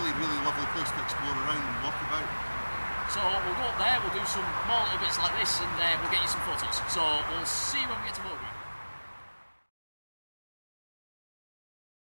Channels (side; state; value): both; inverted; correlation -1.00